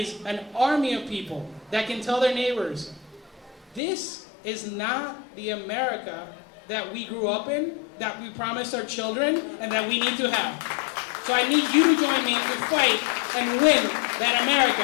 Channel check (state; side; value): drops out; right; at 3.8 s